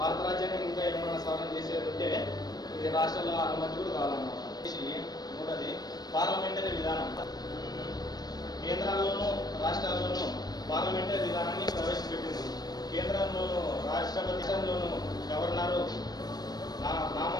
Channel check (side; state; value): right; late; 0.19 ms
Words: రాజ్యాంగం ఇంకా ఏమన్నా సవరణ చేసేది ఉంటే ఇది రాష్ట్రాల అనుమతి కూడా కావాలన్నమాట. మూడోది పార్లమెంటరీ విధానం. కేంద్రాల్లోనూ రాష్ట్రాల్లోనూ పార్లమెంటరీ విధానాన్ని ప్రవేశపెట్టింది. కేంద్రంలోనూ రాష్ట్రపతిలోనూ గవర్నరు